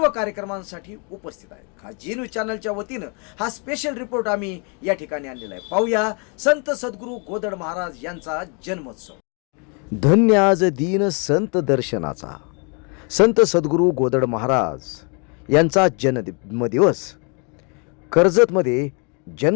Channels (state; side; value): quieter; right; 35.2 dB